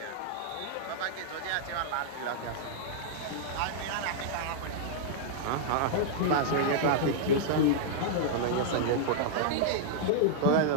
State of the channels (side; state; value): both; different; correlation -0.01